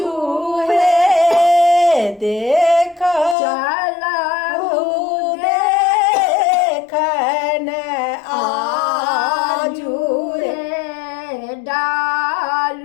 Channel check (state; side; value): drops out; right; at 3.4 s